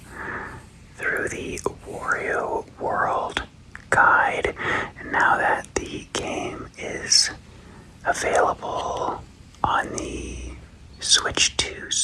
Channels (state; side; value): identical; both; correlation 1.00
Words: the Wario World guide. And now that the game is available on the Switch 2